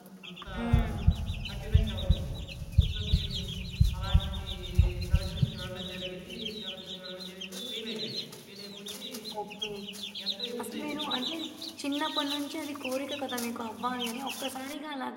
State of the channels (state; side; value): identical; both; correlation 1.00